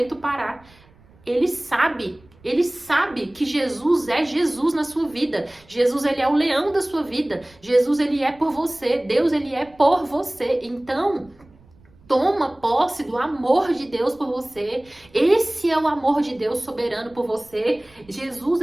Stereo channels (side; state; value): right; noise; rumble, 28 dB below the sound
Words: parar, ele sabe que Jesus é Jesus na sua vida. Jesus, ele é o leão da sua vida. Jesus, ele é por você. Deus, ele é por você. Então, toma posse do amor de Deus por você. Esse é o amor de Deus soberano por você. Jesus,